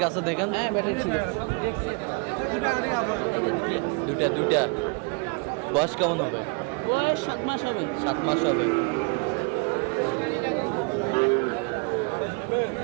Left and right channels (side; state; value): left; quieter; 32.6 dB